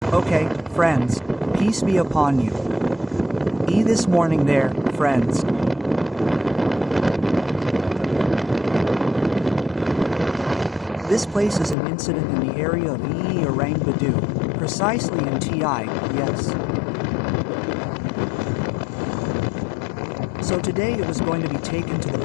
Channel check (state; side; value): drops out; right; at 11.8 s